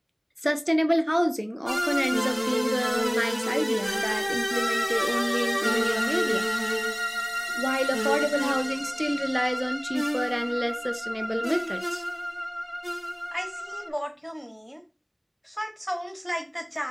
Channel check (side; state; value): both; identical; correlation 1.00